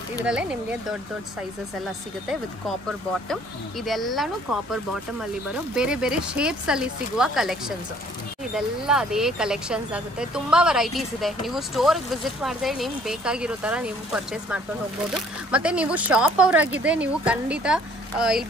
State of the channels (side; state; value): both; normal; correlation 0.58